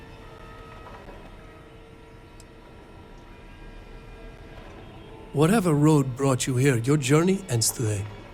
Whatever road brought you here, your journey ends today.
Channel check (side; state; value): both; identical; correlation 1.00